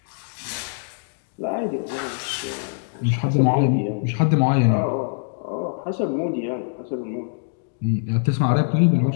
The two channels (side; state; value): right; silent; digital silence